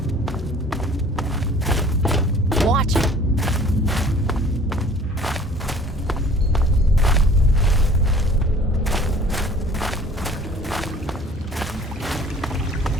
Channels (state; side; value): normal; both; correlation 0.50